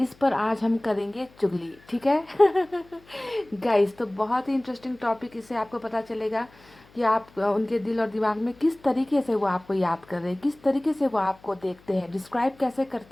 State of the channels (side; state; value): left; noise; hum, 27 dB below the sound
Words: पर आज हम करेंगे चुगली, ठीक है। गाइस, तो बहुत ही इंटरेस्टिंग टॉपिक, इससे आपको पता चलेगा कि आप उनके दिल और दिमाग में किस तरीके से वो आपको याद कर रहे हैं, किस तरीके से वो आपको देखते हैं, डिस्क्राइब कैसे